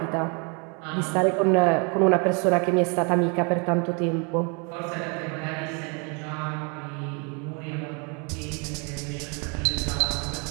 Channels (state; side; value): quieter; left; 34.4 dB